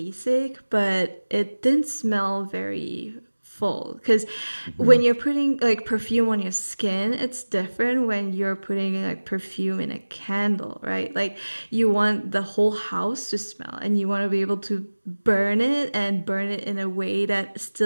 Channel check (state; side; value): inverted; both; correlation -1.00